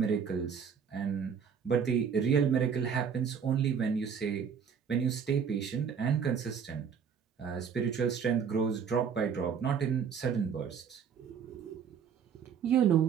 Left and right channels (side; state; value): left; quieter; 7.1 dB